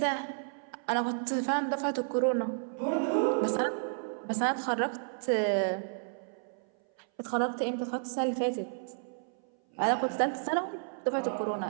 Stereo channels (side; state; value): left; silent; 57 dB below the other